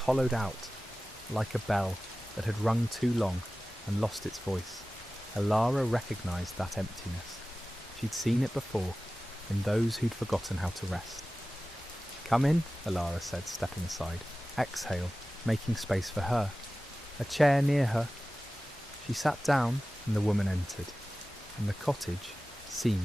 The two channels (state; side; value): normal; both; correlation 0.96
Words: out, like a bell that had rung too long and lost its voice. Elara recognised that emptiness. She'd seen it before, in those who'd forgotten how to rest. "Come in," Elara said, stepping aside. Exhale, making space for her. A chair near her. She sat down, and the woman entered, and the cottage